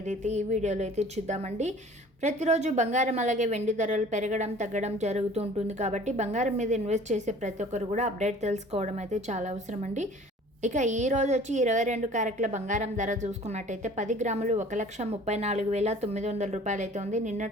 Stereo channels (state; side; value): normal; both; correlation 0.48